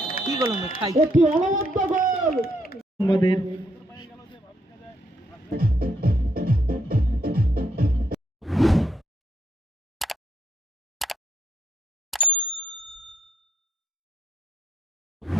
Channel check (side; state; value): both; normal; correlation 0.74